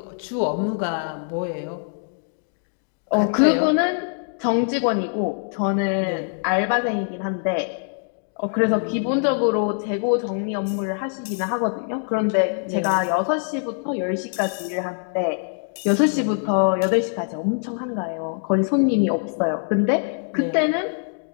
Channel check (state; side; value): silent; right; 59 dB below the other